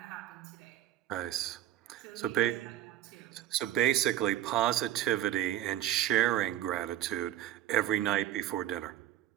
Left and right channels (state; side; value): quieter; left; 12.9 dB